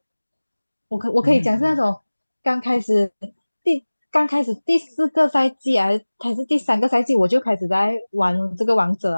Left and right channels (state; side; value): inverted; both; correlation -1.00